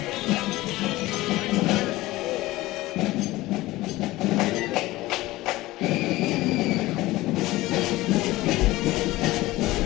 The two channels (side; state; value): right; quieter; 18.3 dB